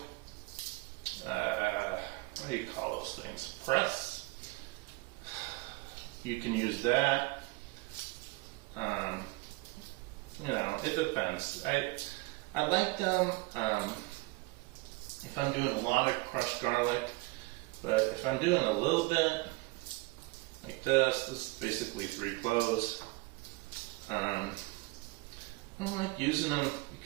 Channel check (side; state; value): left; quieter; 24.7 dB